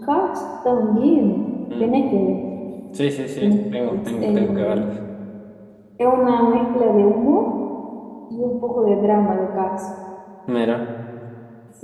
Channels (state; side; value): identical; both; correlation 1.00